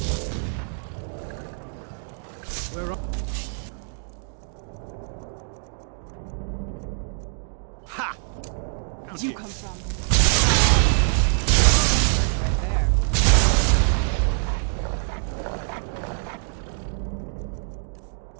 Where are... Ha! Where'd you come from? Right there.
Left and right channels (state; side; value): silent; left; digital silence